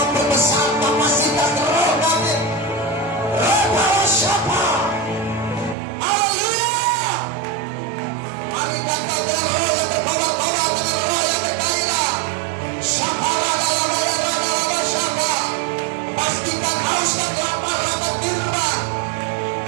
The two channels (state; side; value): drops out; left; at 5.8 s